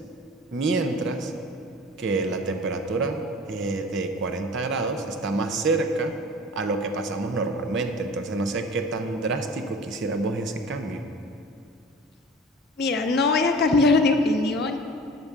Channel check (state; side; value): normal; both; correlation 0.41